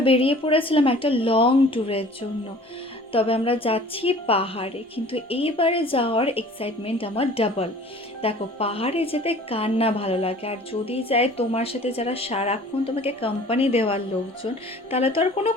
বেরিয়ে পড়েছিলাম একটা লং ট্যুরের জন্য। তবে আমরা যাচ্ছি পাহাড়ে, কিন্তু এইবারে যাওয়ার এক্সাইটমেন্ট আমার ডাবল। দেখো, পাহাড়ে যেতে কার না ভালো লাগে, আর যদি যায় তোমার সাথে যারা সারাক্ষণ তোমাকে কোম্পানি দেওয়ার লোকজন, তাহলে তো আর কোনো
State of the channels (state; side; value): normal; both; correlation 0.48